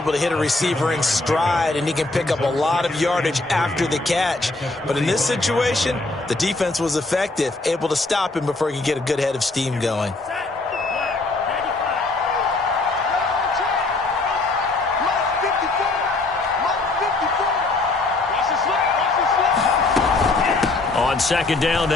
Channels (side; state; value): right; quieter; 3.3 dB